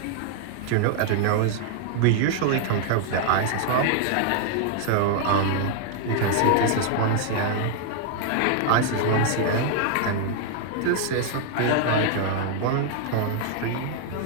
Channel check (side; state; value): both; different; correlation 0.00